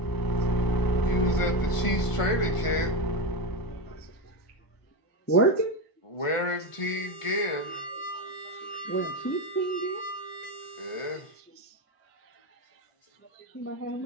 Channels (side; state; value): right; late; 1.5 ms